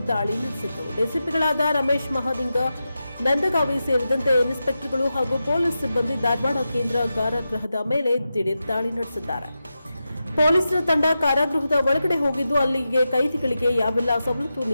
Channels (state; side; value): inverted; both; correlation -0.90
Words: ದಾಳಿ ನಡೆಸಿತು. ಡಿಸಿಪಿಗಳಾದ ರಮೇಶ್ ಮಹಾಲಿಂಗ, ನಂದಗಾವಿ ಸೇರಿದಂತೆ ಇನ್ಸ್ಪೆಕ್ಟರ್ಗಳು ಹಾಗೂ ಪೊಲೀಸ್ ಸಿಬ್ಬಂದಿ ಧಾರವಾಡ ಕೇಂದ್ರ ಕಾರಾಗೃಹದ ಮೇಲೆ ದಿಢೀರ್ ದಾಳಿ ನಡೆಸಿದ್ದಾರೆ. ಪೊಲೀಸರ ತಂಡ ಕಾರಾಗೃಹದ ಒಳಗಡೆ ಹೋಗಿದ್ದು ಅಲ್ಲಿಗೆ ಕೈದಿಗಳಿಗೆ ಯಾವೆಲ್ಲ ಸವಲತ್ತು